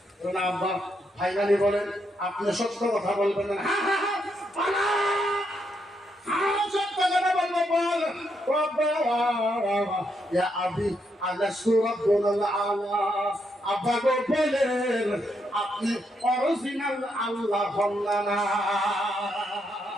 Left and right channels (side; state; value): both; normal; correlation 0.78